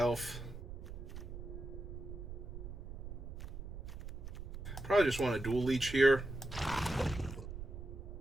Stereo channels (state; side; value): noise; right; rumble, 9 dB below the sound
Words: Probably just want a Dual Leech here.